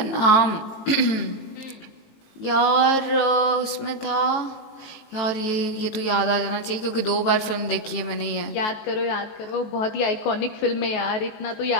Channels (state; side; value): late; right; 19 ms